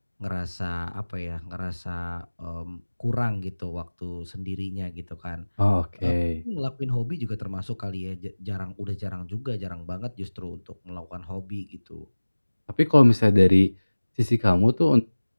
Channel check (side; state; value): both; inverted; correlation -1.00